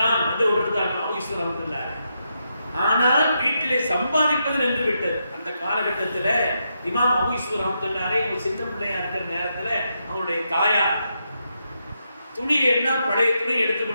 தான் வந்து விடுறாங்க அபூ யூசுப் ரஹ்மத்துல்லாஹி. ஆனால் வீட்டிலே சம்பாதிப்பது நின்று விட்டது. அந்த காலகட்டத்தில் இமாம் அபூ யூசுப் ரஹ்மத்துல்லாஹி ஒரு சின்ன பிள்ளையா இருக்கிற நேரத்தில் அவருடைய தாயார் துணியை எல்லாம் பழைய துணி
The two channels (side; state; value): both; inverted; correlation -0.83